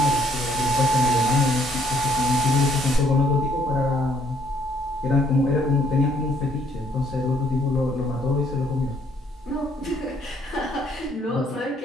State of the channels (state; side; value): normal; both; correlation 0.66